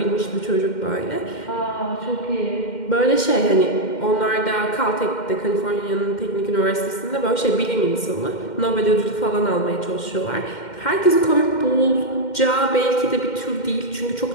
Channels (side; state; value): right; late; 2.1 ms